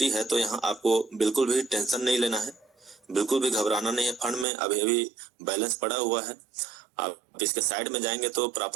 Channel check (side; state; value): left; drops out; at 4.5 s